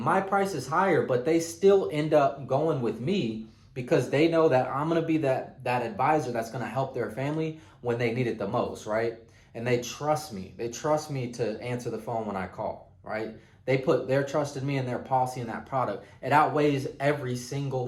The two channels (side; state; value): both; identical; correlation 1.00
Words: my price is higher, but they still end up going with me because they know that I'm going to be that advisor that's going to help their family when they need it the most, right? And they trust me. They trust me to answer the phone when I call, right? They put their trust in me and their policy in that product. It outweighs every single